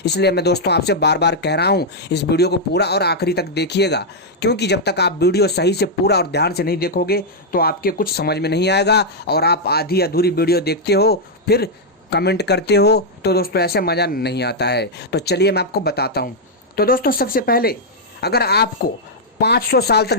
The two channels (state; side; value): normal; both; correlation -0.04